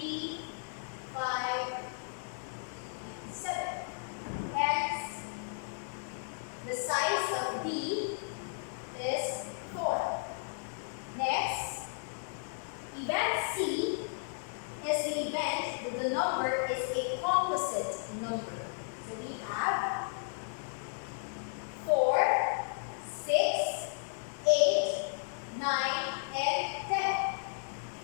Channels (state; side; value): silent; right; digital silence